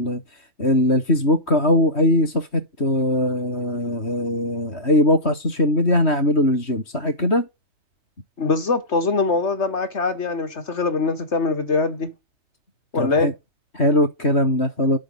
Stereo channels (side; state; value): right; late; 3.1 ms